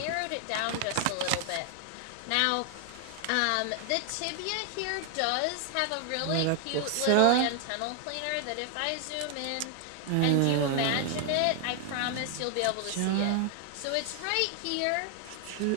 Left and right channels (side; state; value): both; different; correlation 0.00